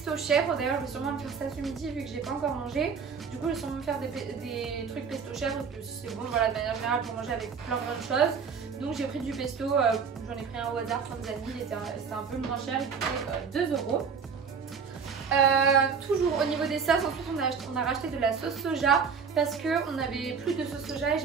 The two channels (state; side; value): quieter; left; 6.0 dB